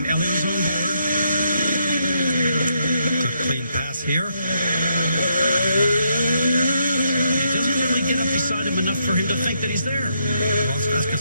Elio's on board. Clean pass here. He doesn't really get up beside him enough for him to think that he's there. Well, that's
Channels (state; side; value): inverted; both; correlation -0.77